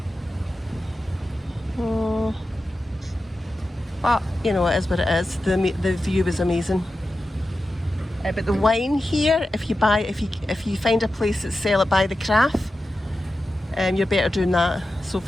But you know, it is what it is. The view was amazing. But the wine here, if you find a place that sell it by the craft, you're better doing that. So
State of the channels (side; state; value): both; normal; correlation 0.92